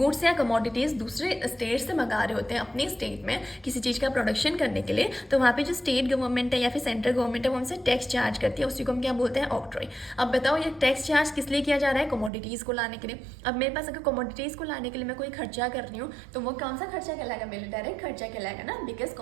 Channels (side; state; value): left; drops out; at 12.3 s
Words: या कमोडिटीज़ दूसरे स्टेट से मंगा रहे होते हैं अपने स्टेट में किसी चीज़ का प्रोडक्शन करने के लिए, तो वहाँ पे जो स्टेट गवर्नमेंट है या फिर सेंट्रल गवर्नमेंट है वो हमसे टैक्स चार्ज करती है, उसी को हम क्या बोलते हैं, ऑक्ट्रॉय। अब बताओ ये टैक्स चार्ज किस लिए किया जा रहा है, कमोडिटीज़ को लाने के लिए। अब मेरे पास अगर कमोडिटीज़ को लाने के लिए मैं कोई खर्चा कर रही हूँ तो वो कौन सा खर्चा कहलाएगा, मेरे डायरेक्ट खर्चा कहलाएगा ना, बिकॉज